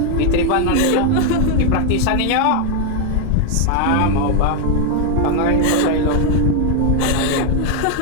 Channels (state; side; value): different; both; correlation 0.01